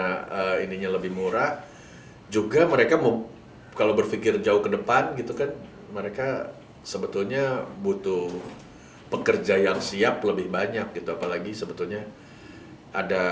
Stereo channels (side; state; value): both; identical; correlation 1.00